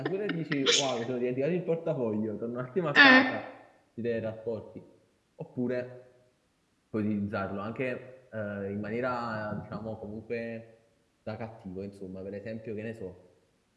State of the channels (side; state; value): both; identical; correlation 1.00